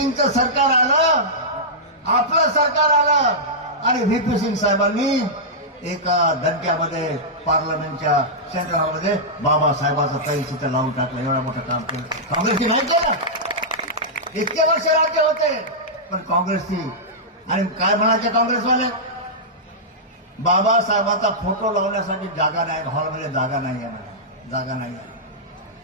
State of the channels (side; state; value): both; normal; correlation -0.12